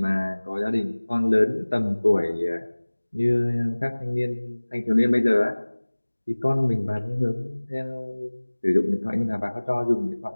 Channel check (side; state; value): both; inverted; correlation -1.00